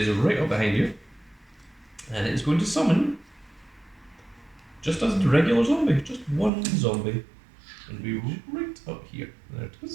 right up behind you, and it is going to summon just as the regular zombie, just 1 zombie, and be right up here. There it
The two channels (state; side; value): drops out; left; at 6.5 s